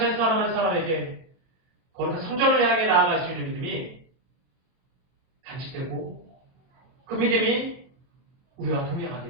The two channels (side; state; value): left; late; 23 ms